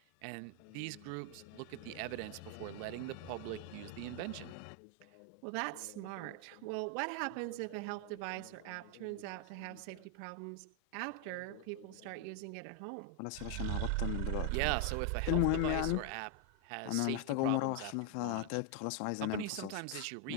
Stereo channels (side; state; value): both; different; correlation 0.00